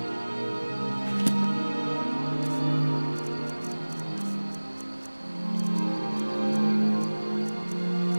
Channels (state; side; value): inverted; both; correlation -1.00